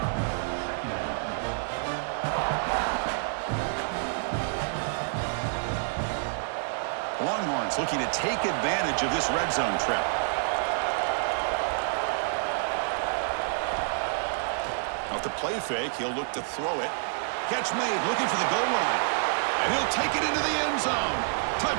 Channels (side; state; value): left; silent; digital silence